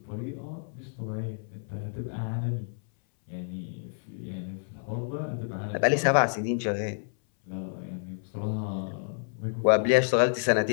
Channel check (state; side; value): silent; right; 58 dB below the other